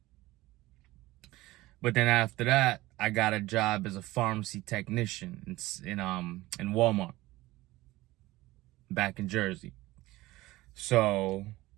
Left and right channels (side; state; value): left; quieter; 18.5 dB